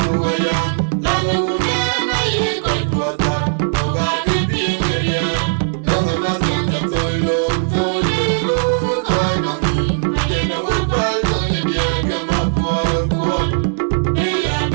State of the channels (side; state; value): left; silent; digital silence